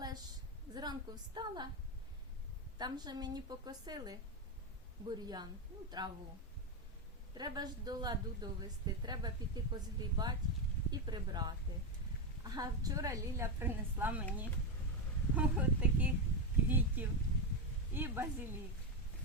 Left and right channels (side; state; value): both; normal; correlation 0.09